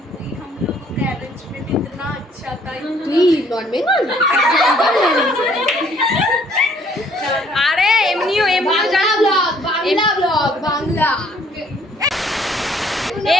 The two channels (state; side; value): normal; both; correlation 0.62